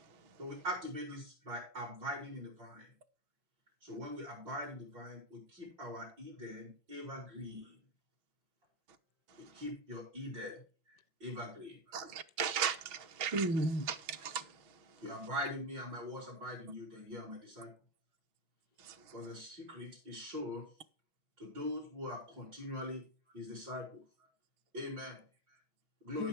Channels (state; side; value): late; left; 6.1 ms